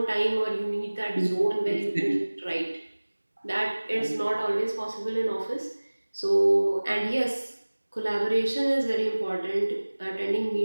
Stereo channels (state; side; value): inverted; both; correlation -1.00